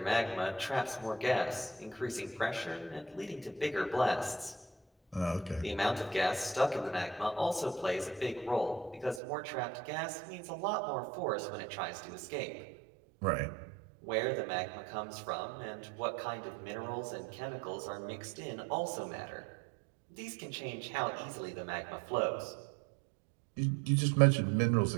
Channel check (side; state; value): left; drops out; at 9.2 s